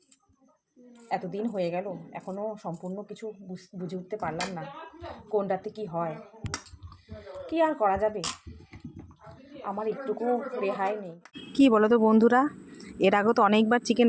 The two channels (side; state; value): both; identical; correlation 1.00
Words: এতদিন হয়ে গেল এখনও সম্পূর্ণ কিছু বুঝে উঠতে পারলাম না কোনটাতে কি হয়। কি আর করা যাবে, আমার একটুকু রেহাই নেই। কি বলো তো বন্ধুরা, এর আগে তো অনেকবার চিকেন